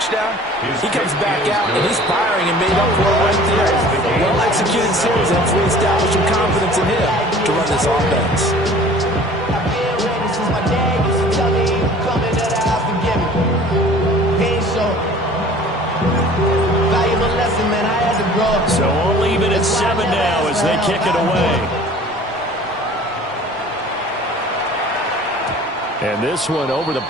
he comes back out and he's firing and made up for it right there. Well-executed series, and that's really established some confidence in him to run this offense. So we'll leave it at 7 now as they kick it away. And this one over the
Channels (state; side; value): normal; both; correlation 0.47